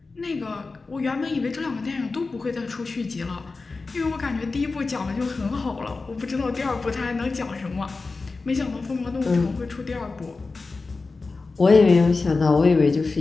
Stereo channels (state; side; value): quieter; right; 3.9 dB